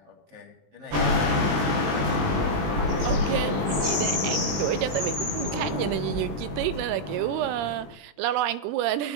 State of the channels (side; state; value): left; late; 20 ms